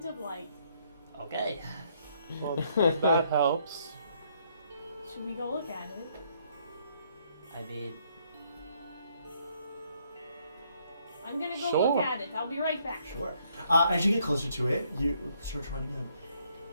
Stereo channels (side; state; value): both; inverted; correlation -0.69